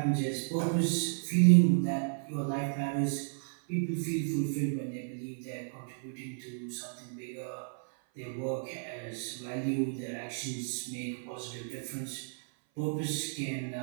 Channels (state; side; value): silent; left; 56 dB below the other